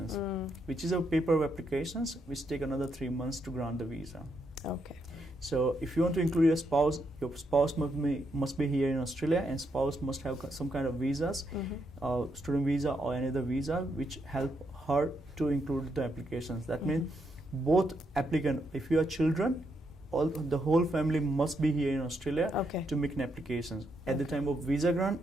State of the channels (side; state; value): both; normal; correlation 0.79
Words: which is a paper applications which take another 3 months to grant the visa. Okay. So if you want to include your spouse must be here in Australia, and spouse must have some kind of visas, student visa or any other visa which help her to include the applications. That means both applicant, if you are children, the whole family must be here in Australia to make an applications at the time of visa grant,